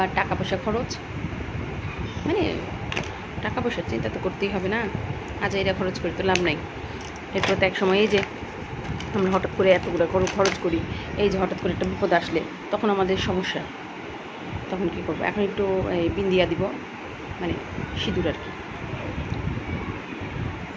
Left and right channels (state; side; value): identical; both; correlation 1.00